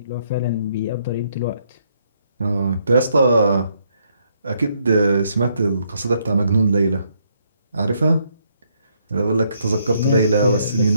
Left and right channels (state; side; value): inverted; both; correlation -0.73